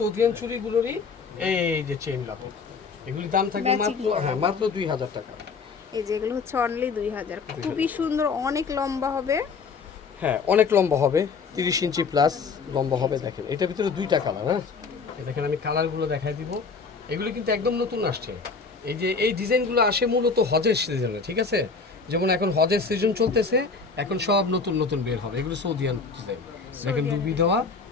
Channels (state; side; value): quieter; right; 4.8 dB